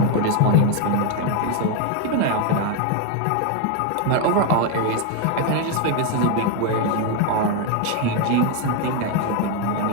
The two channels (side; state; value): both; different; correlation 0.01